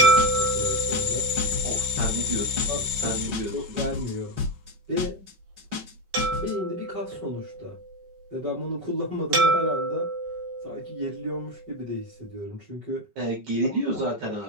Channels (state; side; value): late; left; 5.3 ms